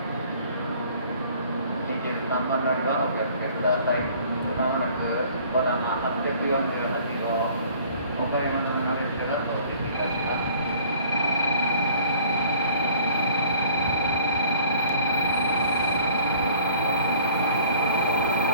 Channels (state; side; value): inverted; both; correlation -0.53